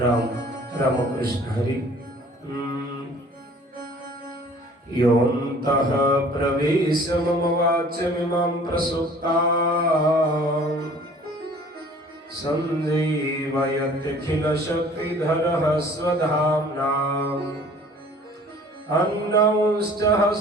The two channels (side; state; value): both; normal; correlation 0.51